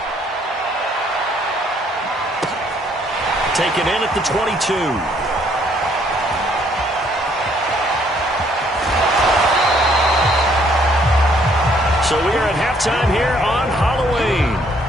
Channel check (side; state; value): both; normal; correlation 0.65